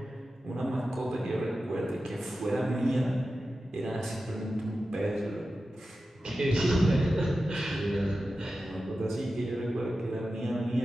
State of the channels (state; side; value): normal; both; correlation 0.93